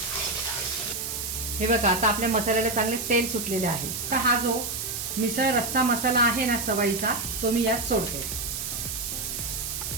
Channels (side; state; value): right; noise; hiss, 4 dB below the sound